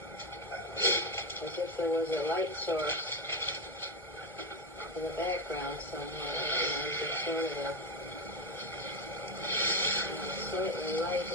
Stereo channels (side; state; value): both; normal; correlation 0.12